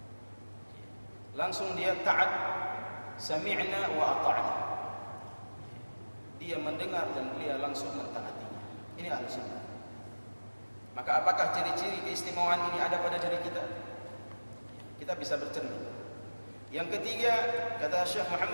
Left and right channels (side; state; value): both; inverted; correlation -1.00